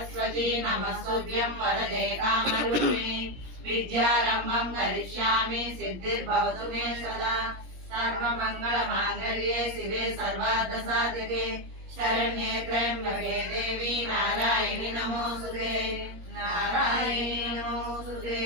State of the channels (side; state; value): left; late; 17 ms